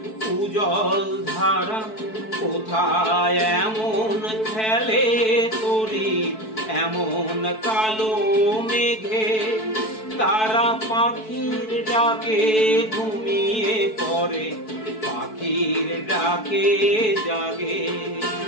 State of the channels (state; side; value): late; right; 4.6 ms